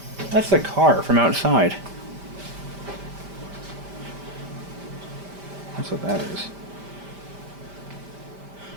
That's the car from outside. That's what that is.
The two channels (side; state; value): left; late; 5.1 ms